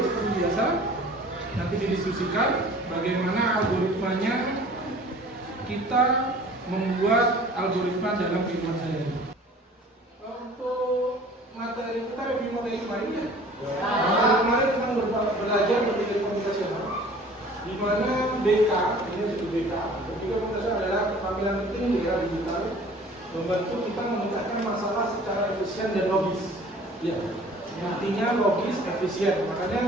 seperti biasa. Nanti didiskusikan bagaimana algoritmanya kita membuat algoritma dalam kehidupan sehari-hari. Untuk materi kita review materi kemarin ya. Kemarin kita belajar berpikir komputasional, di mana BK ini disebut BK. Berpikir komputasional adalah keterampilan penting di era digital, membantu kita memecahkan masalah secara efisien dan logis. Ya, intinya logis, efisien.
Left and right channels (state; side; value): normal; both; correlation 0.48